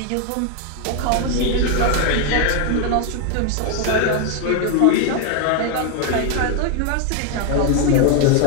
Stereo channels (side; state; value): both; different; correlation 0.01